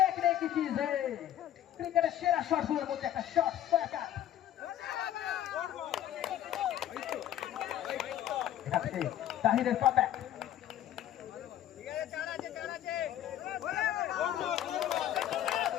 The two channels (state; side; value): quieter; right; 11.7 dB